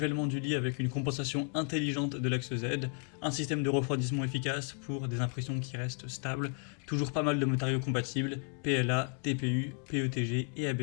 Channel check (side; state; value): right; quieter; 36.4 dB